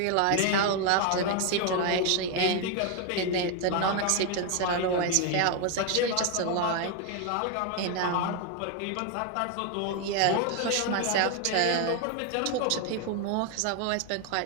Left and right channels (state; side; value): different; both; correlation 0.01